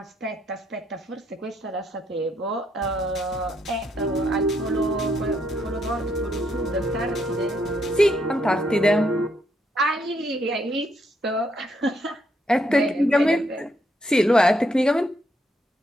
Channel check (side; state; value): both; normal; correlation 0.75